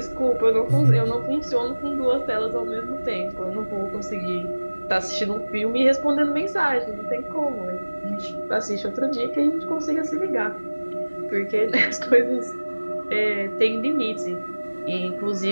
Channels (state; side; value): inverted; both; correlation -1.00